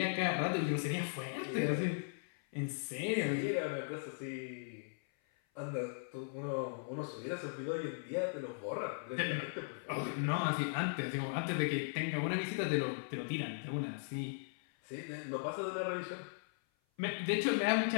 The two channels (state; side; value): silent; right; 52 dB below the other